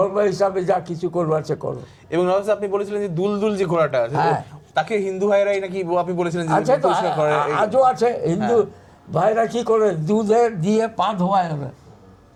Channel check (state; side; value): identical; both; correlation 1.00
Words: হিসাবে যা কিছু করবো আছে করো। এবং নবাব সাহেব, আপনি বলেছিলেন যে দুলদুল যে ঘোড়াটা আছে, হ্যাঁ। তাকে হিন্দু ভাইরাই নাকি আপনি বলেছিলেন যে আছে তো, পরিষ্কার করে। আজও আছে। হিন্দু ভাইরা কি করে, দুধে দিয়ে পা ধোয়ায় ওরা,